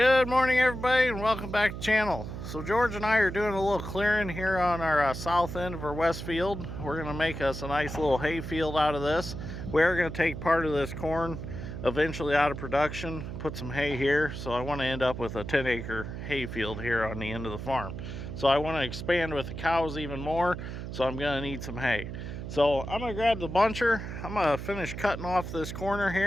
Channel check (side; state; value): right; noise; hum, 7 dB below the sound